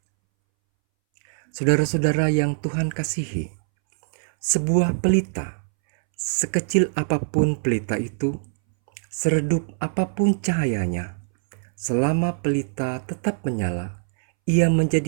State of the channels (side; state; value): left; silent; 63 dB below the other